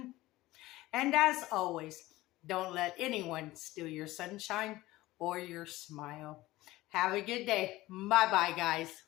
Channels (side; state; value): right; quieter; 17.9 dB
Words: And as always, don't let anyone steal your sunshine or your smile. Have a good day. Bye-bye, guys.